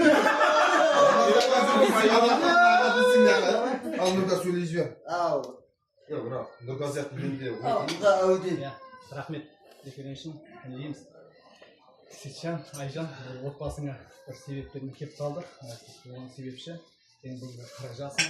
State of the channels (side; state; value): both; identical; correlation 1.00